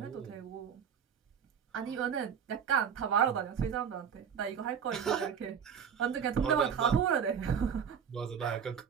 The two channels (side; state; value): left; quieter; 7.5 dB